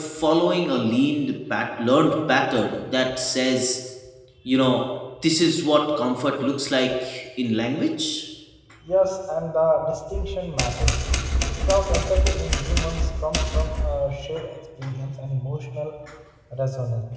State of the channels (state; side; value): identical; both; correlation 1.00